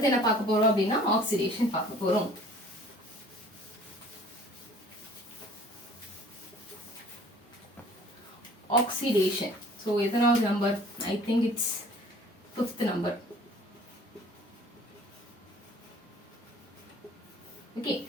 என்ன பார்க்க போறோம் அப்படின்னா ஆக்சிடேஷன் பார்க்க போறோம். ஆக்சிடேஷன். ஸோ எத்தனாவது number, I think it's 5th number. Okay.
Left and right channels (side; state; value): both; normal; correlation 0.51